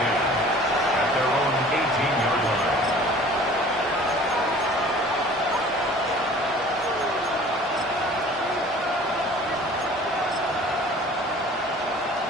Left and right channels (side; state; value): both; normal; correlation 0.48